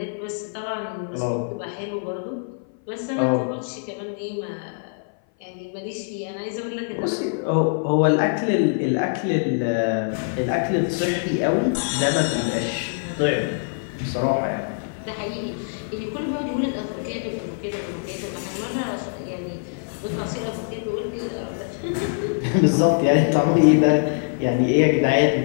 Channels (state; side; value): silent; right; 57 dB below the other